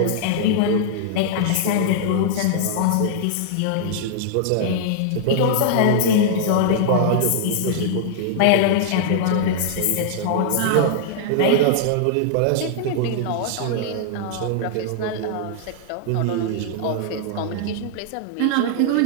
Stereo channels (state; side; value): different; both; correlation -0.01